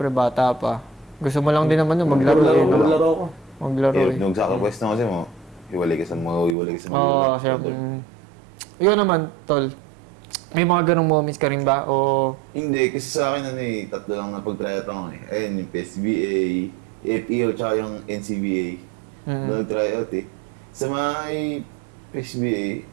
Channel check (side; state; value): left; drops out; at 6.6 s